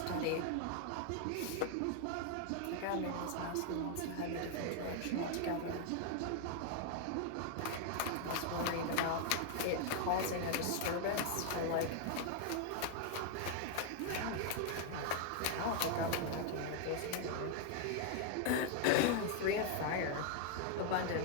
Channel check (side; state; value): both; different; correlation 0.00